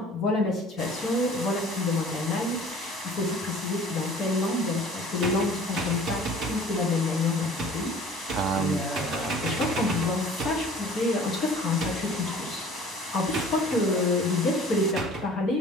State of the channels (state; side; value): normal; both; correlation 0.48